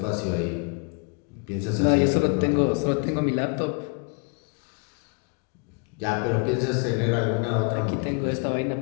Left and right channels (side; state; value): right; quieter; 36.7 dB